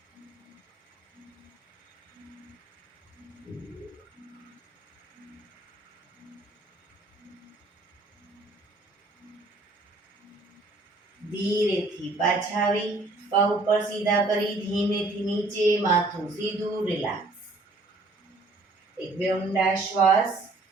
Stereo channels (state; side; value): quieter; left; 3.1 dB